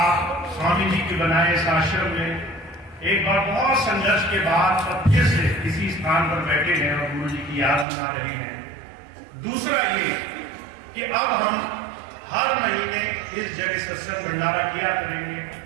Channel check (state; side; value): drops out; left; at 7.9 s